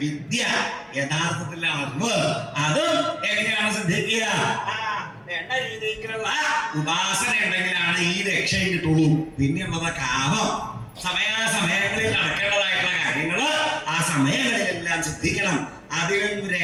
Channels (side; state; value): both; identical; correlation 1.00